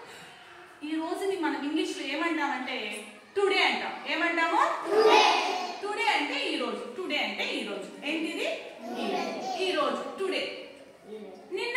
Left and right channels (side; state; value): both; identical; correlation 1.00